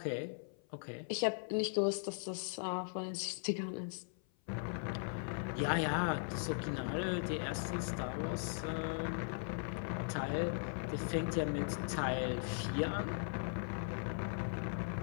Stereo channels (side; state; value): right; silent; 52 dB below the other